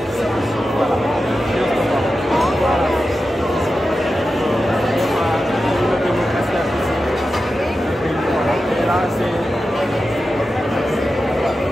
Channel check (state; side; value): normal; both; correlation 0.92